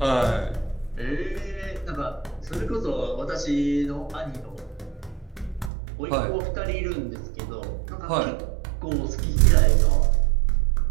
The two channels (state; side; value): drops out; left; at 5.7 s